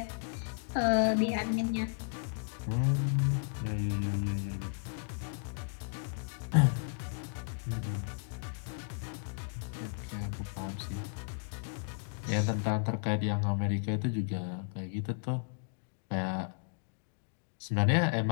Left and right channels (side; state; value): right; silent; digital silence